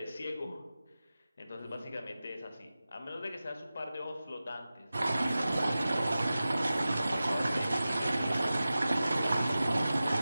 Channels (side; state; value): both; inverted; correlation -0.95